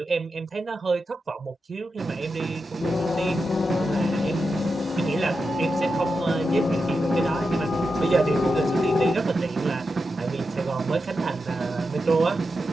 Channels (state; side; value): normal; both; correlation 0.88